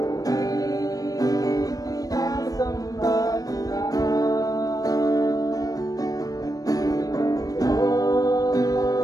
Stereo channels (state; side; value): late; right; 0.18 ms